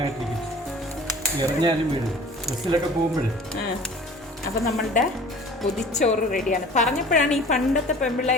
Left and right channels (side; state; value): both; normal; correlation 0.46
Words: അപ്പൊ നമ്മളുടെ പൊതിച്ചോറ് റെഡിയാണ്. പറഞ്ഞപ്പോഴാണ് ഈ പണ്ടത്തെ